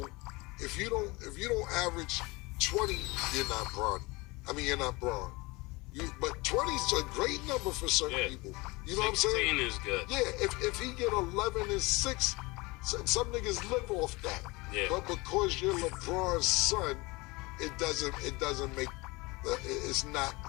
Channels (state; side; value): quieter; right; 24.3 dB